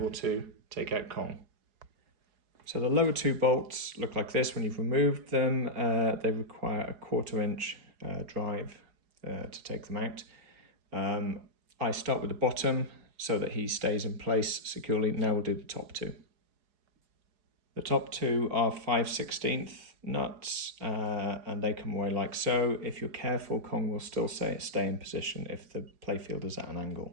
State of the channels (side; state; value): left; late; 4.8 ms